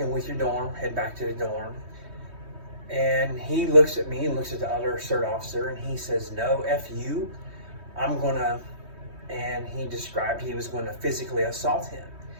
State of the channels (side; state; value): left; late; 3.2 ms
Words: with your dorm, head back to the dorm. And he looks at me and looks at the other CERT officer, and he says, "No, F you. I'm gonna," and he described he was going to physically assault him.